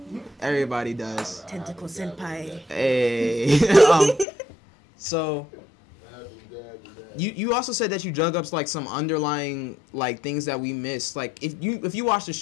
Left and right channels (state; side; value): drops out; right; at 4.2 s